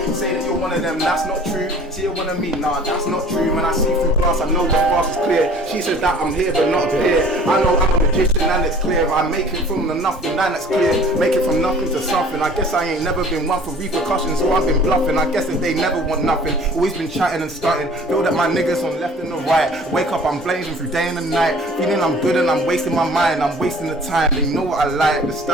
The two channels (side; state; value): both; normal; correlation 0.49